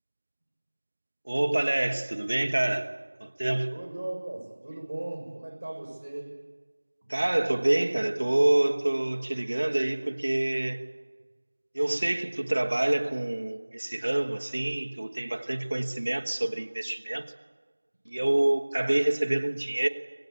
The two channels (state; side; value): inverted; both; correlation -1.00